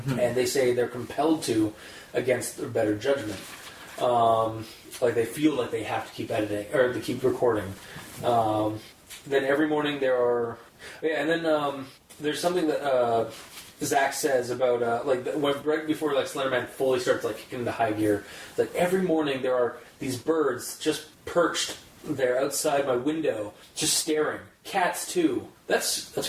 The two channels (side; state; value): both; identical; correlation 1.00